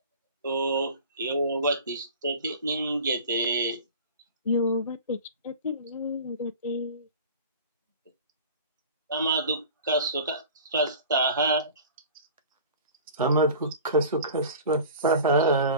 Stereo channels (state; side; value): inverted; both; correlation -0.40